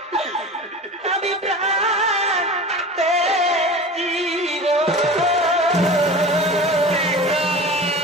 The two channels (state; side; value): normal; both; correlation 0.35